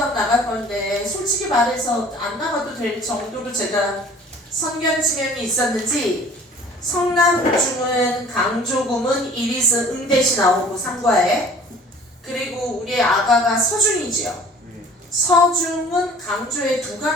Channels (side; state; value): both; normal; correlation 0.49